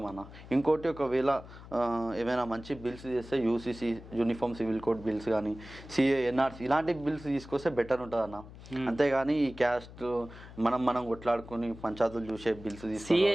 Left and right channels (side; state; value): left; noise; hum, 17 dB below the sound